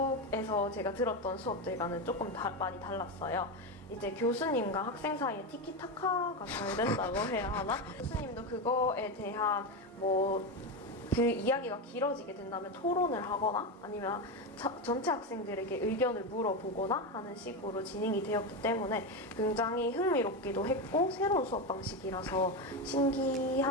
제가 들었던 수업들과는 조금 많이 달랐어요. 이제 교수님과 학생 사이에 티키타카가 잘 된다고 해야 하나? 교수님도 그거에 대한 그 이야기가 길어지게 된다면 토론을 하거나 아니면 전체 학생들에게 의견을 물어보거나 하는 식으로 진행이 되었기 때문에 굉장히 흥미롭기도 했고 새로운 수업 방식이라서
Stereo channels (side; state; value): both; normal; correlation 0.14